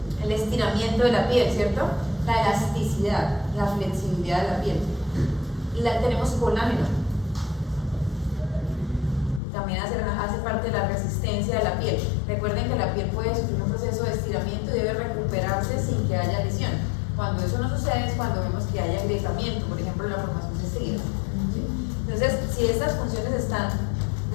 el estiramiento de la piel, ¿cierto? La elasticidad, la flexibilidad de la piel. Tenemos colágeno. También hace parte de la resistencia de la piel. Recuerden que la piel puede sufrir un proceso de estiramiento y debe recuperarse sin que haya lesión. Cuando eso no sucede es cuando vemos que hay agrietamiento, por ejemplo, la formación de estrías. Entonces, si estas funciones están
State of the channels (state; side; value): drops out; right; at 9.4 s